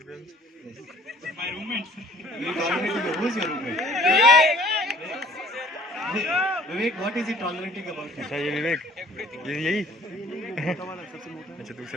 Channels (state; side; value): normal; both; correlation 0.54